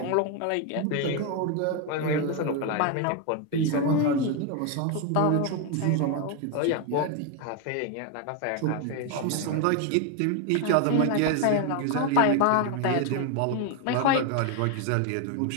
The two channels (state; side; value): different; both; correlation 0.01